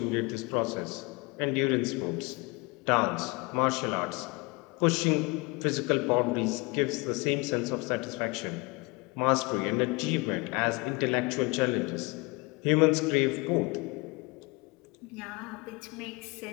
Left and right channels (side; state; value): right; quieter; 27.2 dB